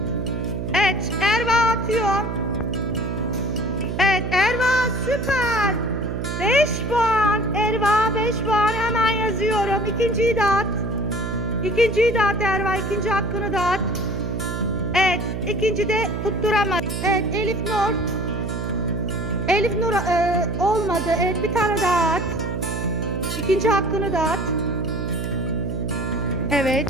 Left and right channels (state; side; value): noise; right; hum, 4 dB below the sound